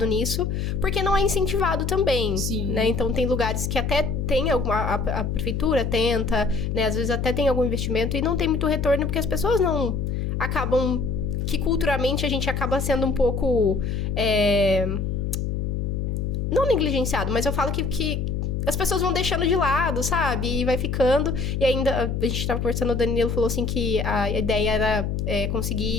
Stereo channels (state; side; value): noise; left; hum, 1 dB below the sound